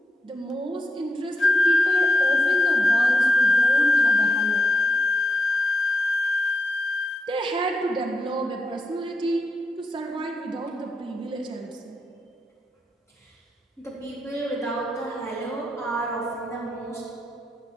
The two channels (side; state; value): both; normal; correlation 0.85